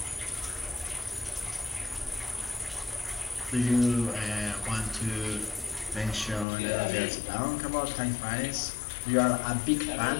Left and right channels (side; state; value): right; drops out; at 6.5 s